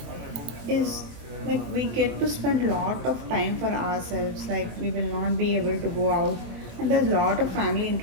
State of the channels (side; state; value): left; late; 24 ms